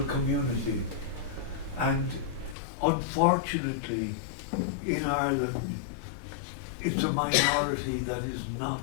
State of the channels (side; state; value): right; drops out; at 2.6 s